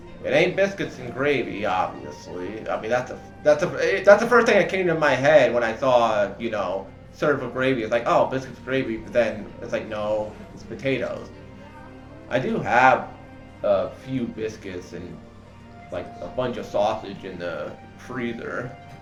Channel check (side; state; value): both; identical; correlation 1.00